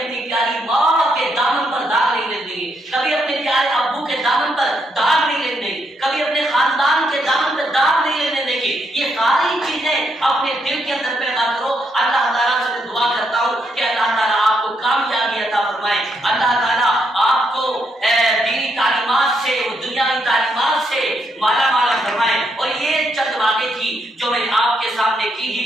प्यारी माँ के दामन पर दाग नहीं लेने देंगे, कभी अपने प्यारे अब्बू के दामन पर दाग नहीं लेने देंगे, कभी अपने खानदान के दामन पर दाग नहीं लेने देंगे। ये सारी चीजें अपने दिल के अंदर पैदा करो। अल्लाह ताला से मैं दुआ करता हूँ कि अल्लाह ताला आपको कामयाबी अता फरमाए, अल्लाह ताला आपको दीनी तालीमात से और दुनियावी तालीमात से माला माला फरमाए। और ये चंद बातें थी जो मैंने आपके सामने की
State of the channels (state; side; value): normal; both; correlation 0.77